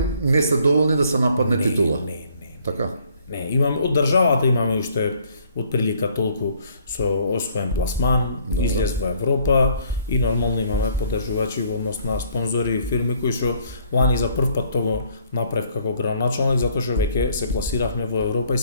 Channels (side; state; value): both; inverted; correlation -0.63